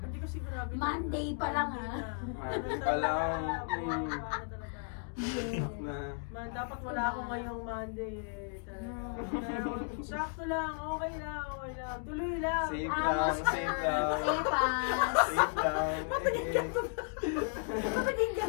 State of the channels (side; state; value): right; silent; 55 dB below the other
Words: Hindi ko sigurado. Monday pa lang, Monday pa lang. Dapat wala ako ngayong Monday eh. Pero sakto lang, okay lang. Tuloy lang. Safe lang, safe lang. Safe lang. Naging